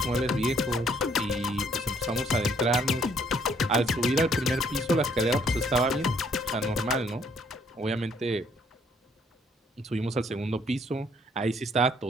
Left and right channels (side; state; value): both; normal; correlation 0.65